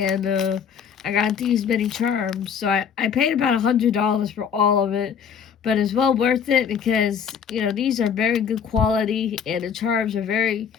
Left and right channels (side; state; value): right; quieter; 7.3 dB